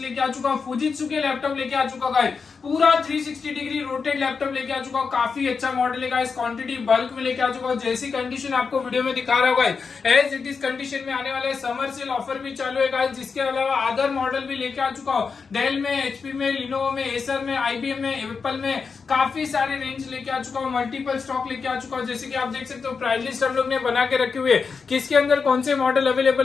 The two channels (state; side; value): quieter; right; 5.3 dB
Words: आ चुका हूँ फुजित्सु के लैपटॉप लेके आ चुका गाइस, पूरा 360 डिग्री रोटेट लैपटॉप लेके आ चुका हूँ। काफी अच्छा मॉडल है गाइस, क्वांटिटी बल्क में लेके आ चुका हूँ। जैसी कंडीशन आपको वीडियो में दिखा रहा होगा एज इट इज कंडीशन में आने वाले समर सेल ऑफर भी चालू है गाइस। जिसके अलावा अदर मॉडल भी लेके आ चुका हूँ, डेल में, एचपी में, लिनोवो में, एसर में, आईबीएम में, एप्पल में, काफी सारे रेंज लेके आ चुका हूँ। मल्टीपल स्टॉक लेके आ चुका हूँ। जैसे कि आप देख सकते हो प्राइस लिस्ट हम लोग ने बना के रखे हुए, किसके अंदर कौन से मॉडल